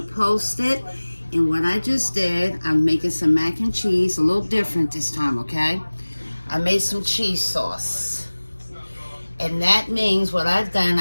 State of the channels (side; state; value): both; inverted; correlation -1.00